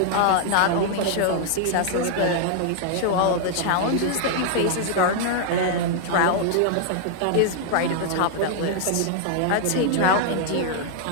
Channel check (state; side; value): different; both; correlation 0.00